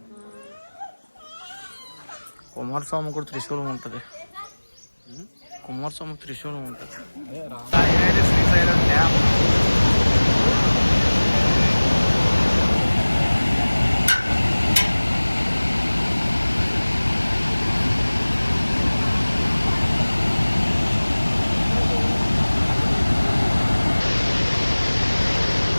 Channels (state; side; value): inverted; both; correlation -1.00